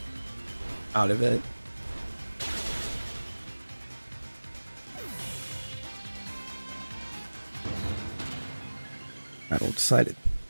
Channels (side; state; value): both; inverted; correlation -1.00